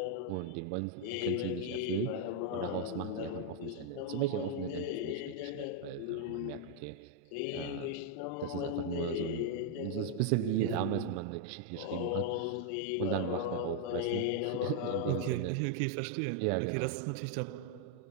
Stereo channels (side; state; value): both; different; correlation 0.00